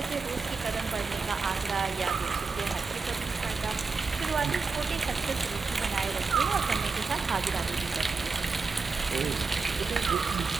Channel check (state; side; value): quieter; left; 4.5 dB